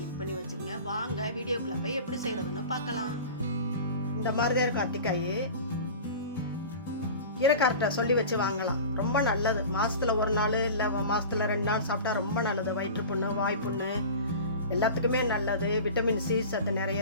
பண்ணி வச்சுங்க. வாங்க வீடியோக்குள்ளே போய் எப்படி செய்கிறதுன்னு பார்க்கலாம். இந்த மாதிரி தான் இருக்கும் அத்திக்காய். கீரைக்கார்ட்ட சொல்லி வச்சு வாங்கலாம். ரொம்ப நல்லது. மாதத்தில் ஒரு நாள் இல்லை மாதத்தில் 2 நாள் சாப்பிட்டா ரொம்ப நல்லது. வயிற்று புண்ணு, வாய் புண்ணு எல்லாத்துக்குமே நல்லது. விட்டமின் சி சத்து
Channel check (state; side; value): inverted; both; correlation -0.35